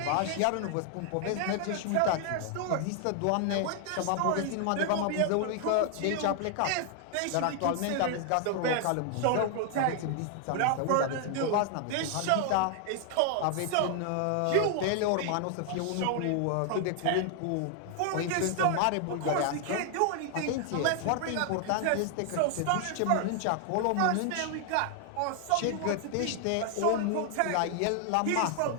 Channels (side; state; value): both; different; correlation 0.00